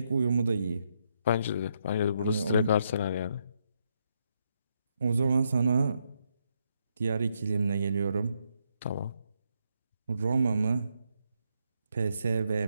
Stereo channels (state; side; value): inverted; both; correlation -0.78